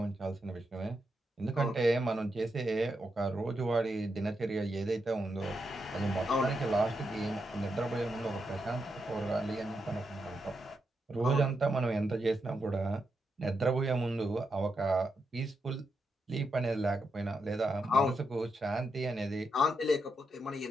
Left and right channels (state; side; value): normal; both; correlation 0.84